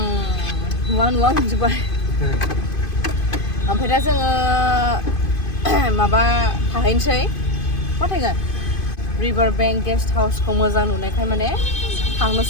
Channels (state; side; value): late; right; 2.5 ms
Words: नुवा मोनजोब्बाय ओमफ्राय दा जोङो माबा थाहैनोसै मा थाहैगोन रिभार बैंक गेस्ट हाउसखौ मोजां नुनायखाय माने